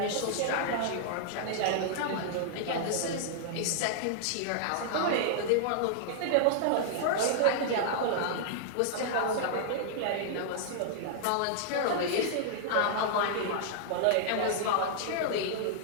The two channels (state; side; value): different; both; correlation -0.01